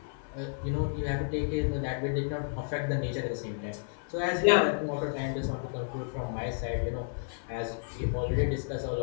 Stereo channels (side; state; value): right; silent; 57 dB below the other